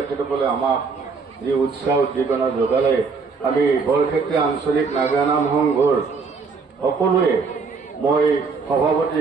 আমাক যি উৎসাহ উদ্দীপনা যোগালে, আমি বৰক্ষেত্ৰী আঞ্চলিক নাগৰানাম সংঘৰ সকলোৱে মই সভাপতি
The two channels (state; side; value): quieter; left; 4.8 dB